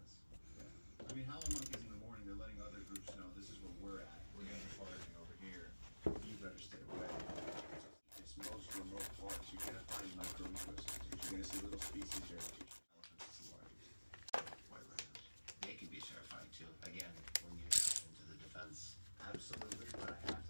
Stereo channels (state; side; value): inverted; both; correlation -1.00